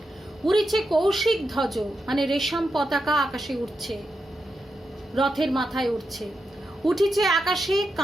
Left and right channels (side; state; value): both; normal; correlation 0.86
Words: উড়িছে কৌশিক ধ্বজ মানে রেশম পতাকা আকাশে উঠছে, রথের মাথায় উঠছে। উঠিছে আকাশে